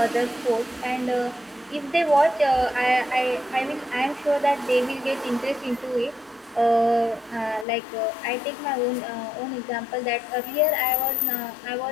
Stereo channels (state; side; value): drops out; right; at 7.7 s